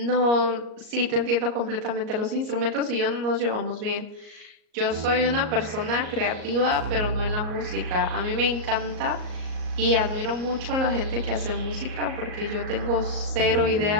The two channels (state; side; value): late; left; 38 ms